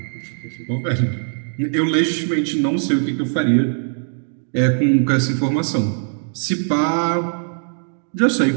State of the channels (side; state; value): left; silent; digital silence